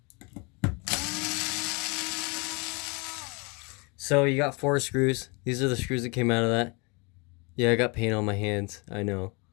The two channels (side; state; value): right; quieter; 30.4 dB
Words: So you got 4 screws. These are the screws that came out of that. Yeah, I got paint on my hands, I know.